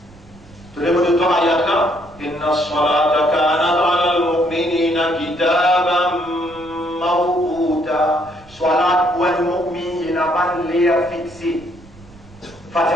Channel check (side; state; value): right; noise; rumble, 24 dB below the sound